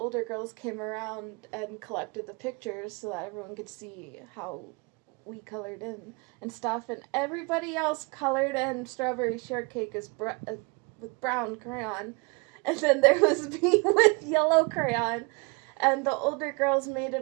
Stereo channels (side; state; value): left; quieter; 29.9 dB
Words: girls came around and collected the pictures so that everyone could see how we colored in and stuff. And everybody else colored in Strawberry Shortcake with brown crayon. And then there was me with yellow crayon. And the older girls made